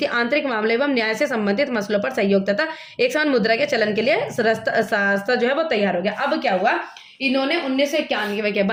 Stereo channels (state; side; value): identical; both; correlation 1.00